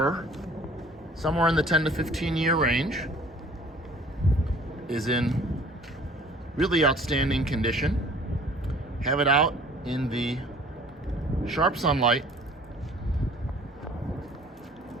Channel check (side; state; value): both; normal; correlation 0.52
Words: somewhere in the 10 to 15 year range. Is in really outstanding condition. Have it out in the sharp sunlight,